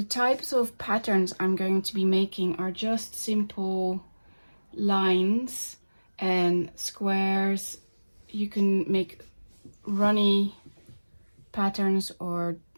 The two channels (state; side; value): inverted; both; correlation -1.00